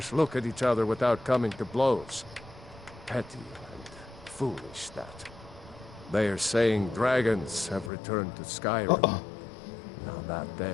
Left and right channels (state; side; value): drops out; right; at 7.9 s